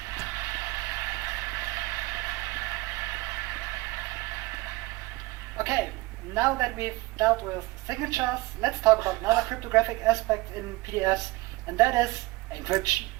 Okay, now that we've dealt with signatures, let's talk about another cryptographic aspect in PDFs, and that is encryption.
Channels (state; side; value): quieter; left; 21.6 dB